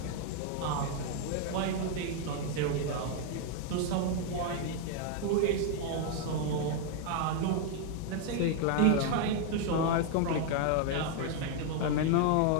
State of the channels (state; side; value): different; both; correlation 0.00